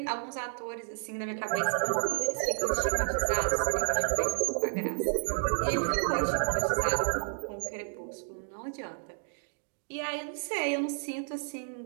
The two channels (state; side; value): silent; left; digital silence